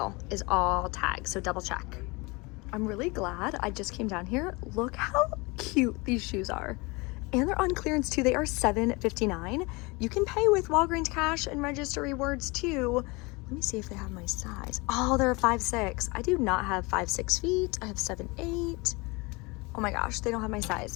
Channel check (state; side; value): quieter; right; 26.0 dB